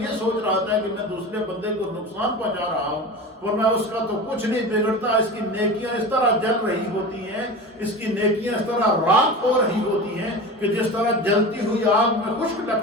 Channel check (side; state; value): both; normal; correlation 0.30